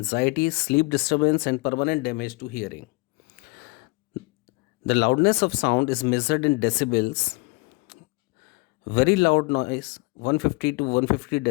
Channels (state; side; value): quieter; right; 27.0 dB